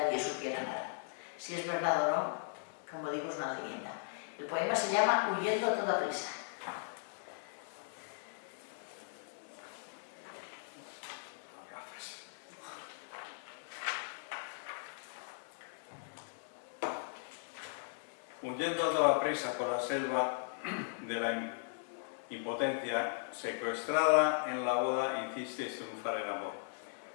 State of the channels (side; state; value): right; silent; digital silence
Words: supiera nada. Si es verdad o no, como digo, es una leyenda. El poema se llama Huyendo a toda prisa. Huyendo a toda prisa por la selva de la impotencia, secuestrada en la boda, hicisteis triunfar el amor.